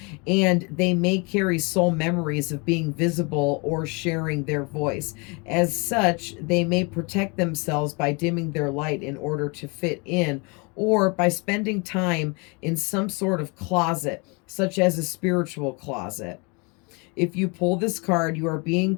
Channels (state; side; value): quieter; right; 30.6 dB